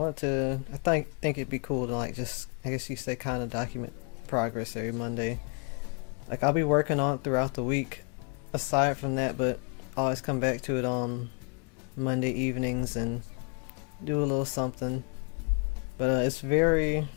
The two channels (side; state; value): right; quieter; 36.2 dB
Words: think it'd be cool to like just, I guess you say, kind of document progress every Monday. Like I'll be working on it throughout the week aside from that, but I always come back to it on Monday evenings and do a little something. But it's very,